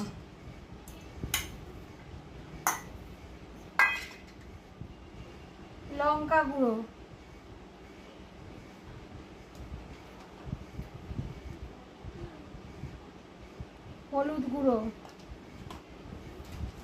লঙ্কা গুঁড়ো, হলুদ গুঁড়ো,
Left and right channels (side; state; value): both; identical; correlation 1.00